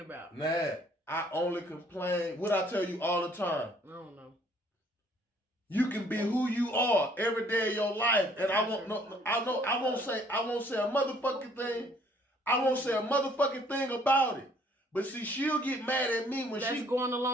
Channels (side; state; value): both; normal; correlation 0.61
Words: about. Nat, I only complain. What I tell you all the time. I don't know. You can be who you are every day of your life, and I won't say a motherfucking thing. I won't say a motherfucking thing about it. But see, she'll get mad at me when That's going